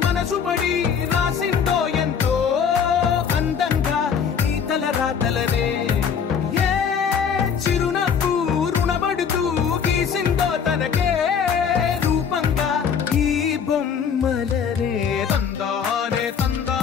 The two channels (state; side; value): quieter; right; 7.0 dB